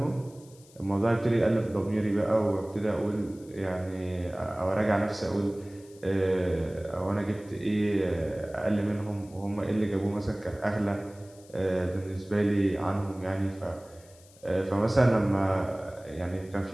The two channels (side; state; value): left; noise; hiss, 26 dB below the sound